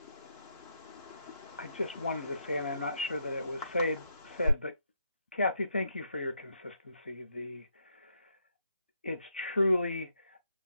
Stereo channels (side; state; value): both; inverted; correlation -0.77